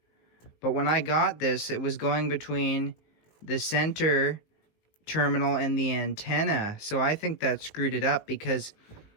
But when I got this, it was going between the center terminal and the antenna. So I think that screwed it up because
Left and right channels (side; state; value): right; late; 19 ms